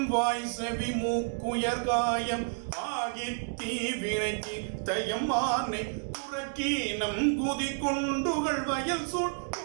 வாய் செவி மூக்குயர் காயம் ஆகி தீவினைக்கு தயமானை புறக்கீனம் குதி கொண்டுகள் வயல் சூழ்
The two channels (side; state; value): left; silent; digital silence